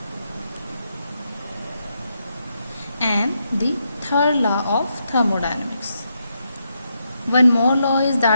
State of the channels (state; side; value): inverted; both; correlation -0.81